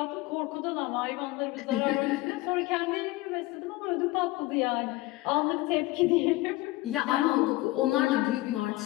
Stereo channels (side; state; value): right; quieter; 19.5 dB